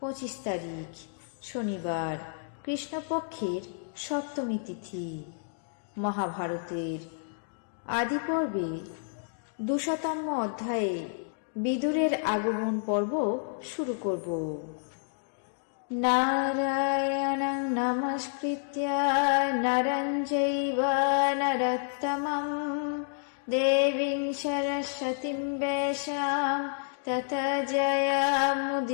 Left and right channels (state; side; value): silent; right; digital silence